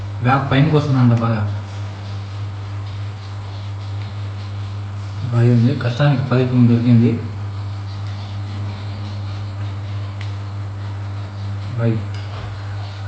బ్యాగ్ పైనకి వస్తుందంట బాగా. బాగా ఉంది. కష్టానికి ఫలితం దొరికింది. బాయ్.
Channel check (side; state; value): both; identical; correlation 1.00